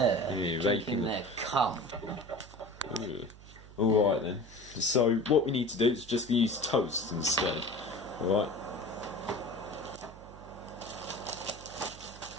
raping drinking their cum. Alright then. So what we need to do is just use toast instead. Alright?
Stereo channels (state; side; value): noise; right; hum, 18 dB below the sound